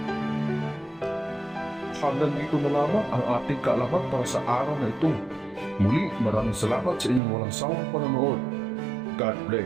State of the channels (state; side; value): drops out; left; at 7.2 s